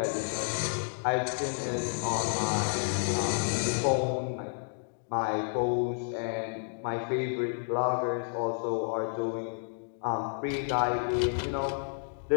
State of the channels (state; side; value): silent; right; digital silence